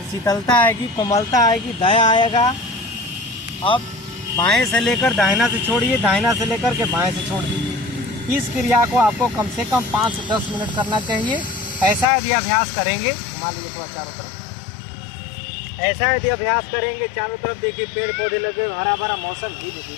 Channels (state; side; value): drops out; right; at 12.1 s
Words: शीतलता आएगी, कोमलता आएगी, दया आएगा। अब बाएं से लेकर दाहिना से छोड़िए, दाहिना से लेकर के बाएं से छोड़ दीजिए। इस क्रिया को आपको कम से कम 5 से 10 मिनट करना चाहिए। ऐसा यदि अभ्यास करेंगे, घुमा लीजिए थोड़ा चारों तरफ, ऐसा यदि अभ्यास करेंगे चारों तरफ, देखिए पेड़ पौधे लगे, हरा भरा मौसम, धीरे